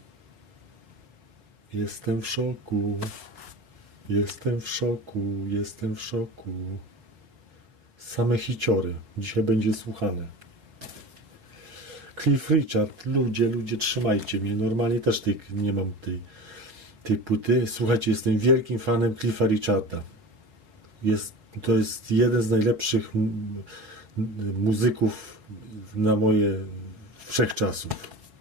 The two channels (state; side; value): late; left; 5.0 ms